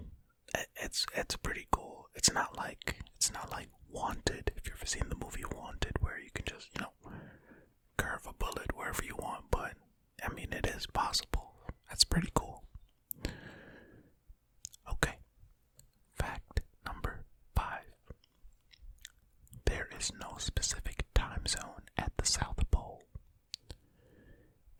it's pretty cool. It's not like Wanted. If you've ever seen the movie is no specific time zone at the South Pole.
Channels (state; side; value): identical; both; correlation 1.00